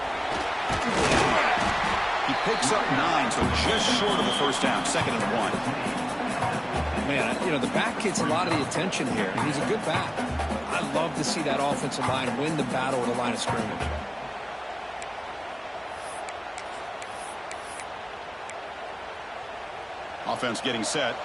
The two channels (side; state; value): both; identical; correlation 1.00